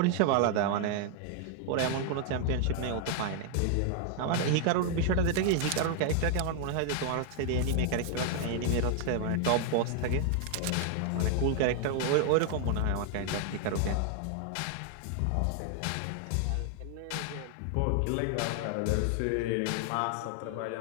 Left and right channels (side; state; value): both; different; correlation 0.00